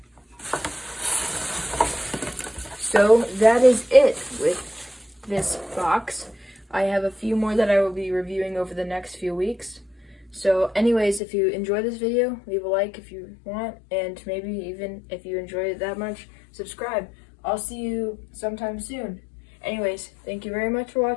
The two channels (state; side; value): drops out; right; at 11.2 s